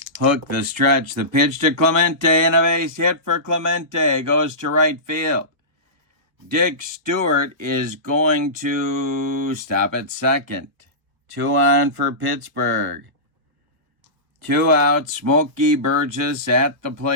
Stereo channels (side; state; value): left; late; 1.7 ms